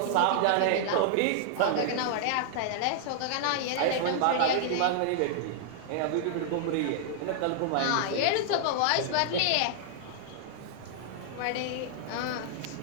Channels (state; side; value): different; both; correlation -0.01